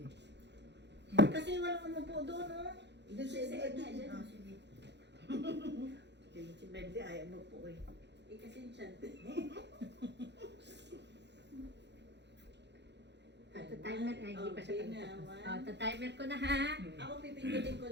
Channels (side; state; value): left; late; 0.50 ms